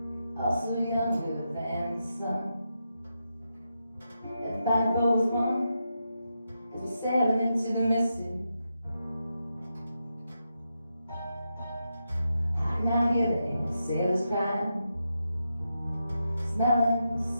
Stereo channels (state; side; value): inverted; both; correlation -0.86